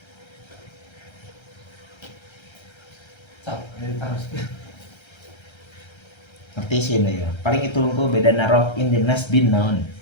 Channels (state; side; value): late; right; 1.3 ms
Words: Ngerti sih ya. Paling itu engko beda narof in di nasbin naon.